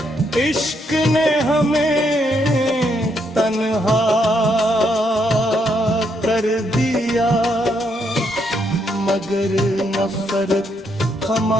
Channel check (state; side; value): normal; both; correlation 0.76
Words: इश्क ने हमें तन्हा कर दिया, मगर नफरत